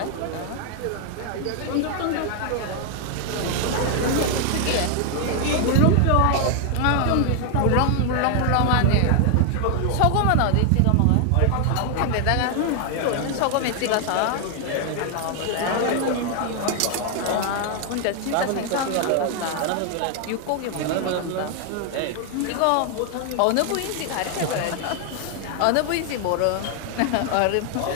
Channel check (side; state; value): both; different; correlation 0.00